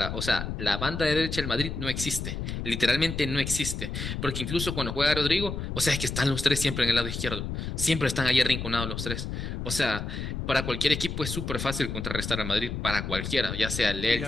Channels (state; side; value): noise; left; rumble, 5 dB below the sound